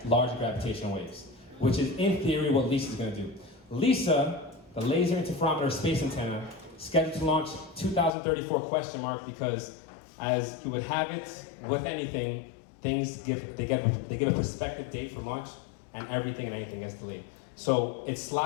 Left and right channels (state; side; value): drops out; right; at 8.1 s